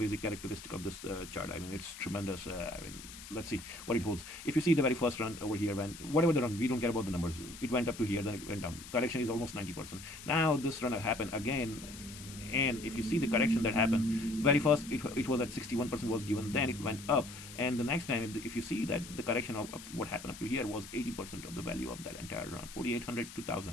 characteristic of this chart. I mean, it's tremendous. I mean, let's see what it holds. If you see the very first run over here, when whatever the run, we don't care about the numbers. It went up to here, then it went down. Correction is almost 90%. Now this run happened again, and if you see the correction that happened, very first it was at 61% was given, then it went up, and the next time if you see that the correction of what happened up to here was 80% of the value of that entire run. 4800,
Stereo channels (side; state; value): left; noise; hiss, 14 dB below the sound